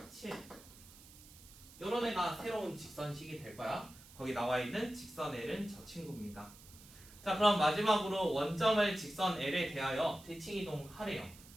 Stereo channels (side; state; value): right; noise; hiss, 20 dB below the sound